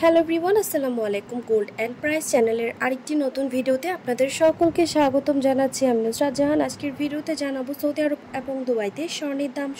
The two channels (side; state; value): both; identical; correlation 1.00